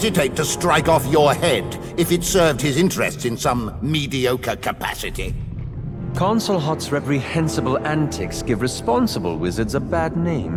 to strike off your head if it served his interests in some mediocre capacity. Consul Hart's reprehensible antics give responsible wizards a bad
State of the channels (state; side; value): identical; both; correlation 1.00